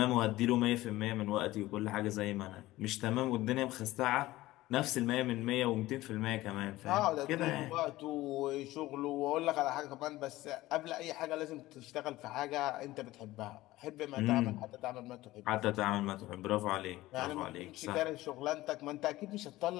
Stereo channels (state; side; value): quieter; right; 17.3 dB